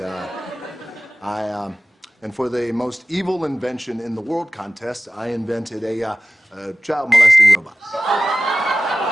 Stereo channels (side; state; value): both; normal; correlation 0.96